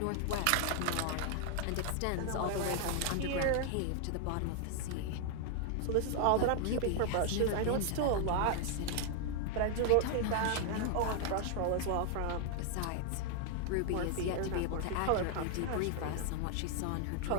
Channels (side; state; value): both; different; correlation 0.00